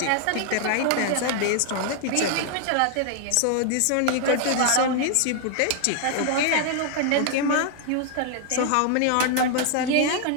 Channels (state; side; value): different; both; correlation 0.00